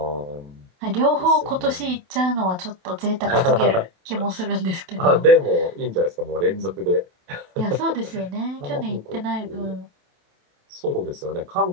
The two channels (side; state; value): left; late; 28 ms